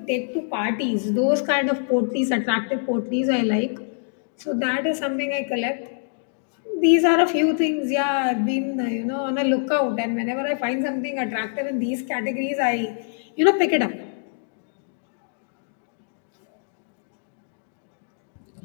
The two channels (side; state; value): right; silent; digital silence